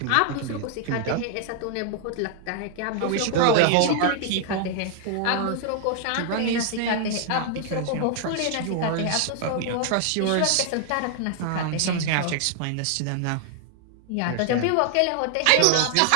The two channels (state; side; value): different; both; correlation 0.00